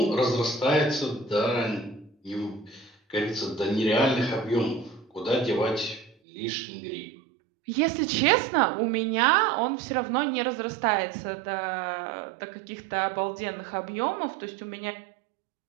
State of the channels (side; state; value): left; drops out; at 6.2 s